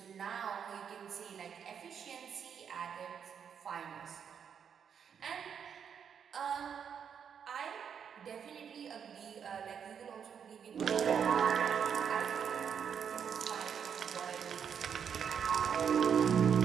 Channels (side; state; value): left; quieter; 7.5 dB